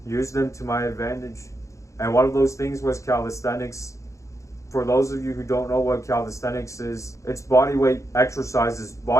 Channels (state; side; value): late; right; 0.15 ms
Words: use them to my advantage. And one of those things was calisthenics. For those of you who don't know what calisthenics is, it's bodyweight exercises,